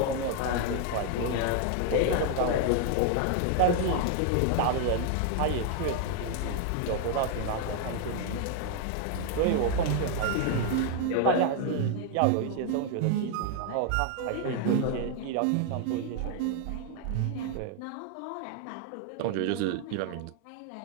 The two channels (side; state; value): both; different; correlation 0.00